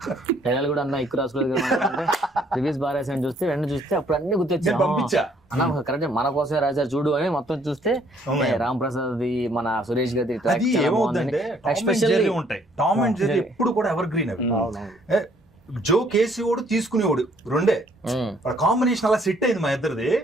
డైలాగ్ కూడా అన్న ఎక్కువ రాసుకోలేదు అంటే రివ్యూస్ బాగా రాశాను. చూస్తే వెంటనే చూస్తే అప్పుడు అన్ని గుర్తొచ్చా అన్న కరెక్ట్ మన కోసమే రాశారు చూడు అని మొత్తం చూస్తే రామ్ ప్రసాద్ మన సురేష్ గారి ఉంటాయి. టామ్ అండ్ జెర్రీ ఎప్పుడు కూడా ఎవర్ గ్రీన్ అవి. జో కేసీఓడు తీసుకునేవాడు రెండే, కాంబినేషన్ అలా సెట్ అయింది మా ఇద్దరిది.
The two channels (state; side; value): normal; both; correlation 0.64